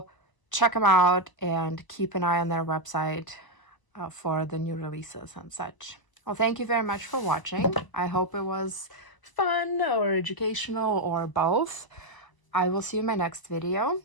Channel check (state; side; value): late; right; 1.0 ms